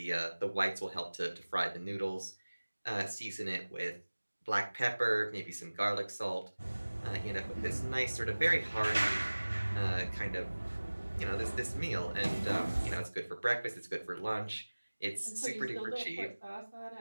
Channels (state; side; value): inverted; both; correlation -1.00